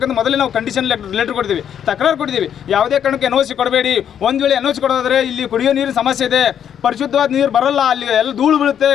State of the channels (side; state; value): right; quieter; 9.0 dB